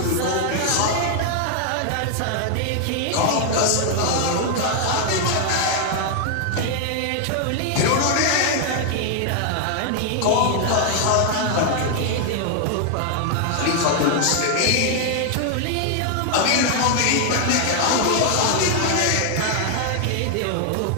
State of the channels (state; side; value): different; both; correlation 0.00